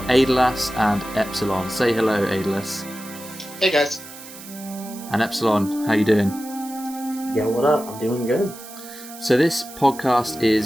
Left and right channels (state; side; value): noise; right; hiss, 16 dB below the sound